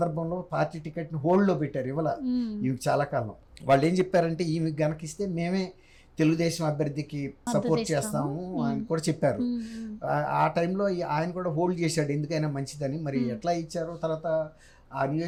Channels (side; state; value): both; identical; correlation 1.00